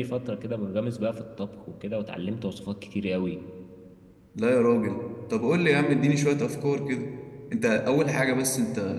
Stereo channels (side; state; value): both; identical; correlation 1.00